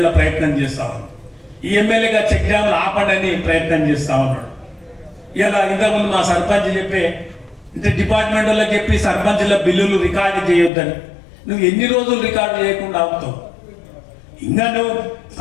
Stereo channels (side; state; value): right; drops out; at 10.7 s